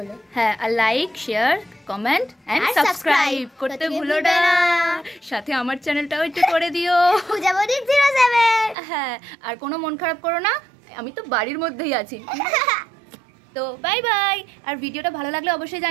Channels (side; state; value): left; drops out; at 8.8 s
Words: হ্যাঁ, আর like, share, comment and subscribe করতে ভুলো না। সাথে আমার চ্যানেলটাও একটু করে দিও, পূজাবতী 07। হ্যাঁ, আর কোনো মন খারাপ করো না, আমি তো বাড়ির মধ্যেই আছি। তো বাই বাই। আর ভিডিওটা ভালো লাগলে অবশ্যই